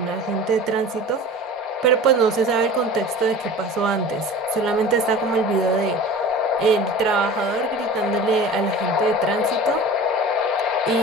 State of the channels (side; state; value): both; normal; correlation 0.38